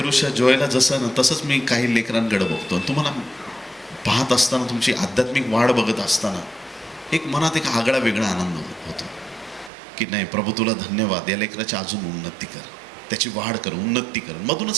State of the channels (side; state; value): left; drops out; at 9.7 s